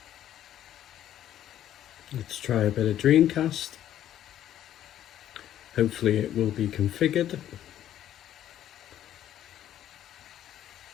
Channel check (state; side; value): quieter; right; 11.5 dB